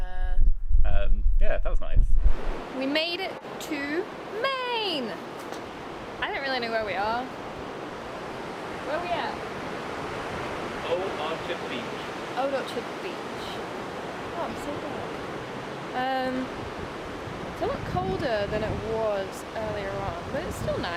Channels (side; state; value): both; identical; correlation 1.00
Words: Yeah, that was nice. We made it to Maine. I don't really know where we are. Where are we at? Old Orchard Beach. Old Orchard Beach. Oh, I'm so glad. It's a lot colder than it was earlier on, but it's still